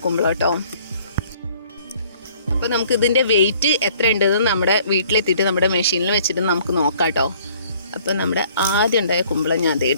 കുമ്പളം കേട്ടോ. അപ്പോൾ നമുക്ക് ഇതിൻ്റെ വെയിറ്റ് എത്ര ഉണ്ടെന്ന് നമ്മുടെ വീട്ടിലെത്തിയിട്ട് നമ്മുടെ മെഷീനിൽ വെച്ചിട്ട് നമുക്ക് നോക്കാം കേട്ടോ. അപ്പോൾ നമ്മുടെ ആദ്യം ഉണ്ടായ കുമ്പളം ഞാൻ അത്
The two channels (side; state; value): both; inverted; correlation -0.58